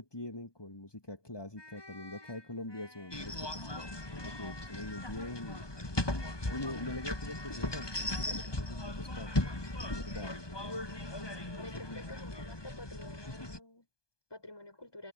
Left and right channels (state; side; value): late; right; 1.2 ms